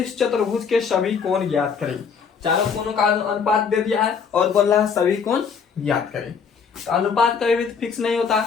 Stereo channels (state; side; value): quieter; right; 6.2 dB